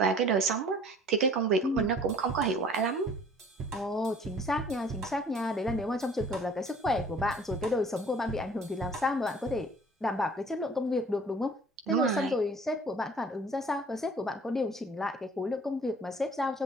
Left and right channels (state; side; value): normal; both; correlation 0.51